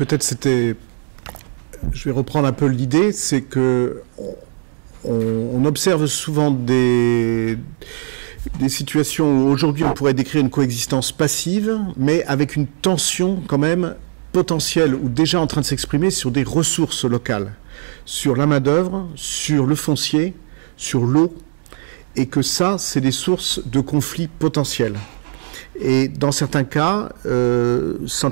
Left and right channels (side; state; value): left; silent; digital silence